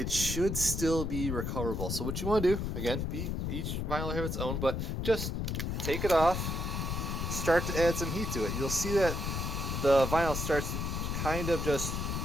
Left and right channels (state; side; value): noise; left; rumble, 2 dB below the sound